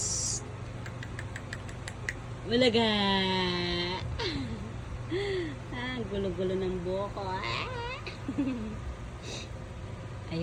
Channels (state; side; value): identical; both; correlation 1.00